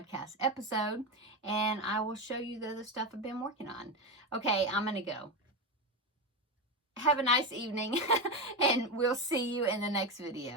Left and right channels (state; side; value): normal; both; correlation 0.14